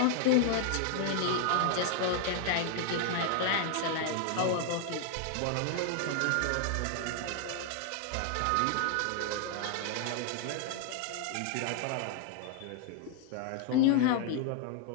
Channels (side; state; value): both; different; correlation 0.00